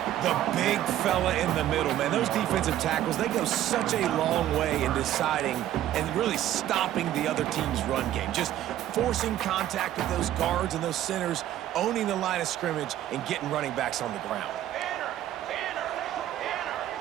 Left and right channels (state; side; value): quieter; left; 12.6 dB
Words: The big fella in the middle, man. Those defensive tackles, they go such a long way in deciding and really stopping the other team's run game. Just forcing contact with those guards and those centers, owning the line of scrimmage, and getting running backs on the ground.